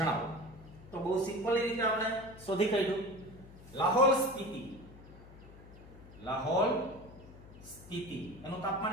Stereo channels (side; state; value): left; noise; hum, 19 dB below the sound